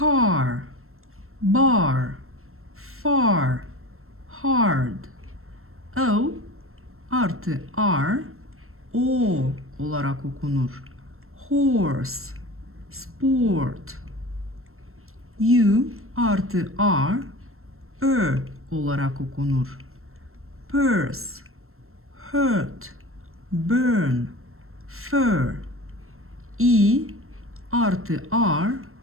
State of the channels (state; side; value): late; left; 0.62 ms